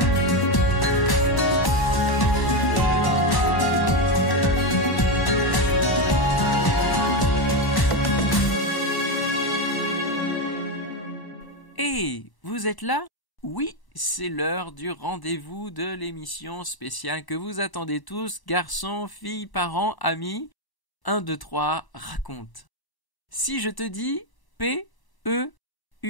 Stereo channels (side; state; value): right; late; 1.0 ms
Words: Hey, vous êtes là? Oui, c'est l'heure du rendez-vous de l'émission spéciale que vous attendez tous, garçons, filles, parents, amis. 1, 2, 3, raconte. Si je te dis P-E-U-R,